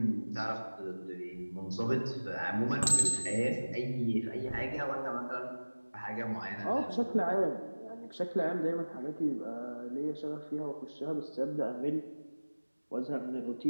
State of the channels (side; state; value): both; inverted; correlation -1.00